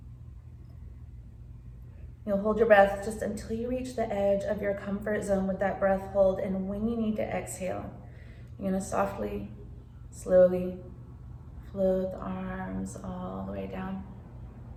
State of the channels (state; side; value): identical; both; correlation 1.00